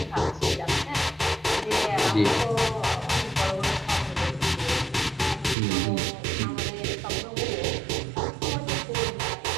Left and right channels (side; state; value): left; drops out; at 5.6 s